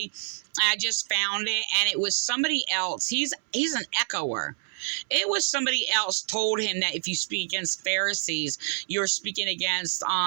I just found it, and it was somebody else. He's an echoer. It was somebody else told him that if you speak against Pharisees, you're speaking against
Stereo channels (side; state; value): left; silent; 60 dB below the other